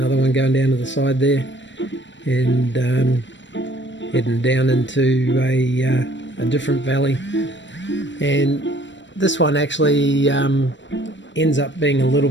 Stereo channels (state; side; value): late; right; 0.53 ms